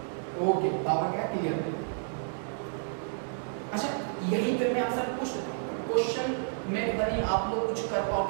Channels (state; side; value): silent; left; digital silence